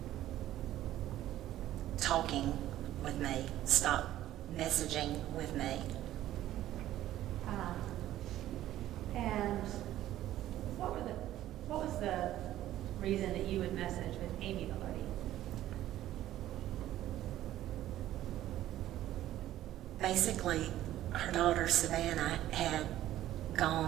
talking with me, stopped messaging with me. And what was the reason that you would message with Amy Vilardi? Basically, her daughter Savannah had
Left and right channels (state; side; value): quieter; left; 13.5 dB